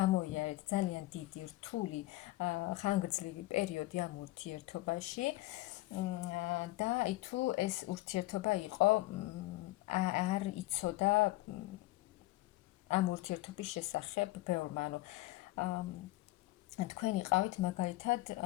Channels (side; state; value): right; quieter; 18.7 dB